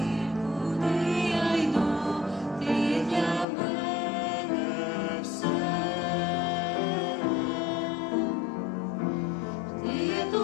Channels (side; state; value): right; drops out; at 3.5 s